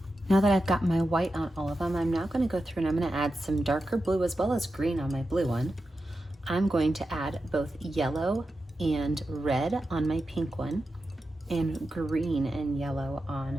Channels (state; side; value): normal; both; correlation 0.90